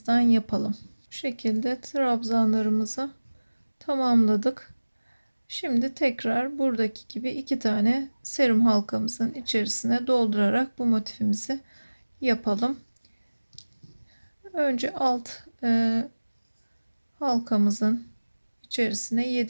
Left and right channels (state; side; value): inverted; both; correlation -1.00